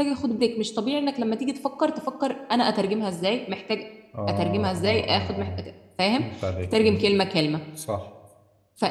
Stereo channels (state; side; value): identical; both; correlation 1.00